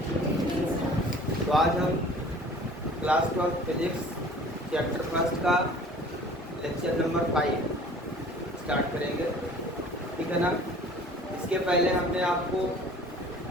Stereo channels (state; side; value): normal; both; correlation 0.48